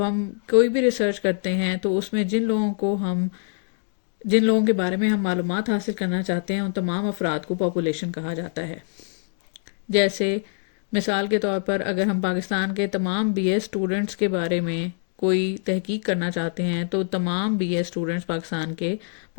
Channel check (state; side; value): silent; right; 62 dB below the other